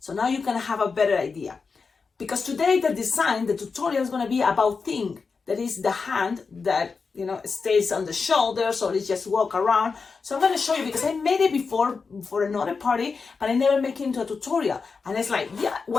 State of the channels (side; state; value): right; quieter; 4.9 dB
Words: So now you can have a better idea. Because today the tutorial is gonna be about thing, that is the hand that, stays on the shoulders or it just walk around. So I'm gonna show you because I made it before for another party, but I never make it into a tutorial. And it's like, yeah,